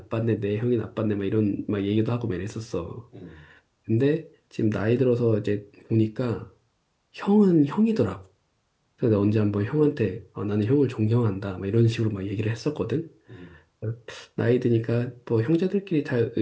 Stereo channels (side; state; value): both; identical; correlation 1.00